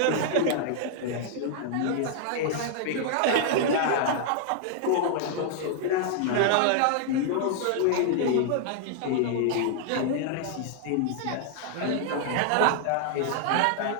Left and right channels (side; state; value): both; different; correlation 0.00